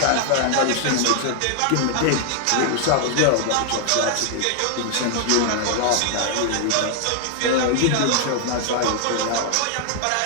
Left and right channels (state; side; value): different; both; correlation 0.00